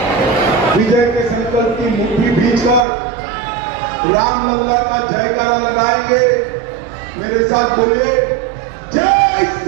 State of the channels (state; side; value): drops out; left; at 2.9 s